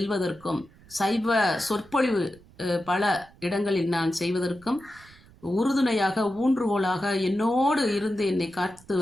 சைவ சொற்பொழிவு பல இடங்களில் நான் செய்வதற்கும் உறுதுணையாக ஊன்றுகோலாக என்னோடு இருந்து என்னை காத்து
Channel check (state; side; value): noise; right; rumble, 25 dB below the sound